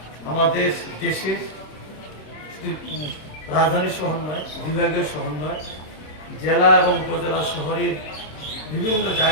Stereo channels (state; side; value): late; right; 26 ms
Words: আমাদের দেশের রাজধানী শহর নয়, বিভাগীয় শহর নয়, জেলা এবং উপজেলা শহরের বিভিন্ন